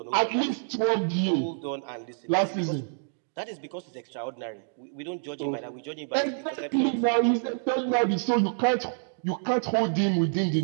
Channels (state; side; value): silent; left; digital silence